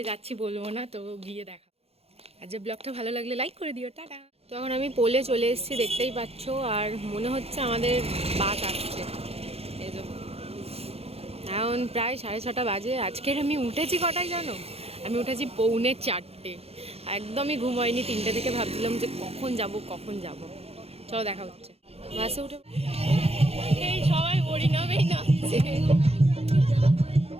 যাচ্ছি বলবো না, তো গিয়ে দেখা। আর যে ব্লগটা ভালো লাগলে লাইক করে দিও, টাটা। তো এখন আমি পোলে চলে এসেছি, দেখতেই পাচ্ছ। আর মনে হচ্ছে আমাদের বাস আসছে। এই যে এখন প্রায় 6:30 বাজে। আজকের আমি উঠেছি কটায় জানো? আমি উঠেছি 3:45। একদমই ঘুম হয়নি। 3টে থেকে ভাবছিলাম যে কখন যাব। চলো দেখা হচ্ছে। বাসে উঠে এই সবাই হরিনামেই নাচছে।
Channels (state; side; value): late; left; 0.29 ms